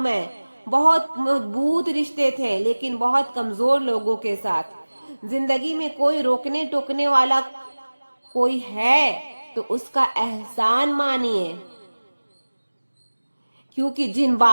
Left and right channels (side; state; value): both; inverted; correlation -1.00